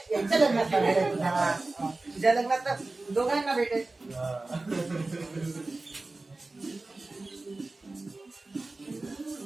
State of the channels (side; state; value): left; quieter; 3.2 dB